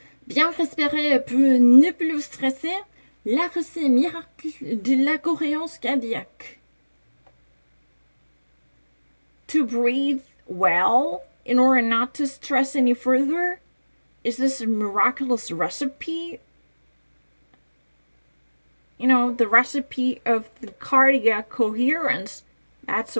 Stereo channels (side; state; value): both; inverted; correlation -1.00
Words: Bien respirer peut ne plus stresser. La recette miracle de la cohérence cardiaque. To breathe well in order not to stress any further? Is this a miraculous recipe? You know, the recipe of the cardiac coherence. That's